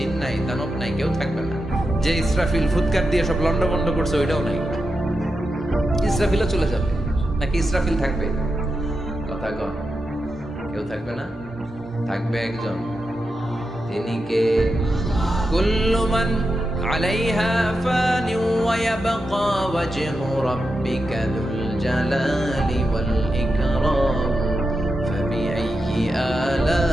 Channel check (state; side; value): normal; both; correlation 0.88